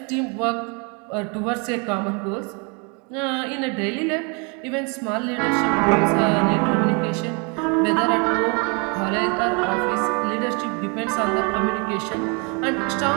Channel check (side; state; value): left; quieter; 33.5 dB